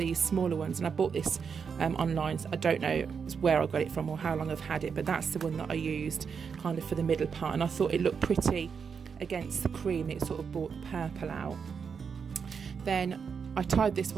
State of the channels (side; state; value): left; quieter; 6.2 dB